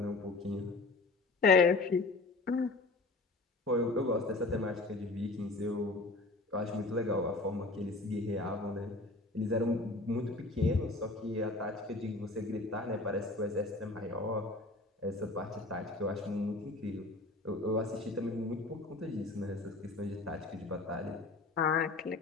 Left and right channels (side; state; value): right; quieter; 3.2 dB